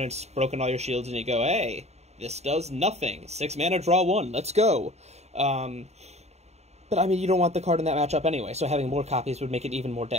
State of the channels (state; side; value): late; left; 0.32 ms